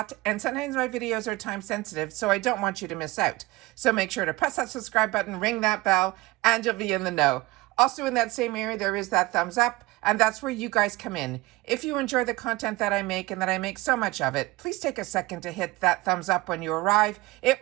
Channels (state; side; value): quieter; left; 20.5 dB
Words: and sometimes my videos are time sensitive, so I don't want you to miss out. So make sure to press that subscribe button, ring that bell, and you'll be in the know. Also in that same area, there is that thumbs up, and that's where you guys come in. If you enjoy the content that I make, and that I make so much of it, please take a second to hit that thumbs up when you arrive. It